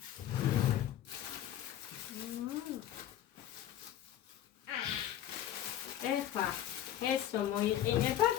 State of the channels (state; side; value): quieter; right; 11.5 dB